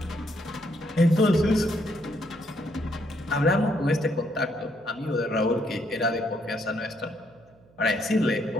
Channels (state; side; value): noise; right; hum, 29 dB below the sound